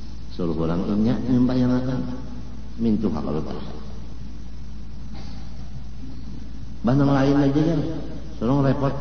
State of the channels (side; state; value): both; identical; correlation 1.00